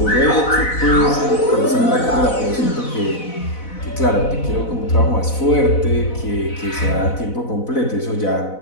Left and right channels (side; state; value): right; late; 4.0 ms